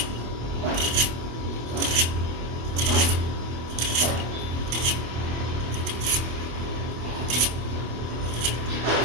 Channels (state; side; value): late; left; 24 ms